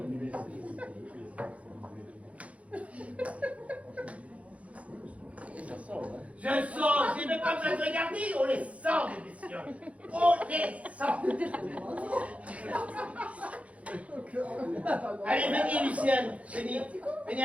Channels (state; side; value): late; left; 0.065 ms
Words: Je sens, j'ai même pas besoin de regarder, on les sent, les messieurs. On les sent. Allez, venez, Lucienne,